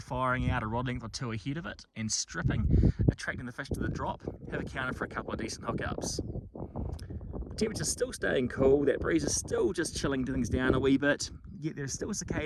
out a rod length or 2 ahead of it and stripping, attracting the fish to the drop, have accounted for a couple of decent hookups. The temperature's still staying cool, that breeze is still just chilling things down a wee bit, yet there's still a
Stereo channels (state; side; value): identical; both; correlation 1.00